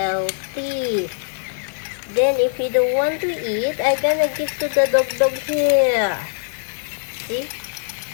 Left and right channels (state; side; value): silent; right; 65 dB below the other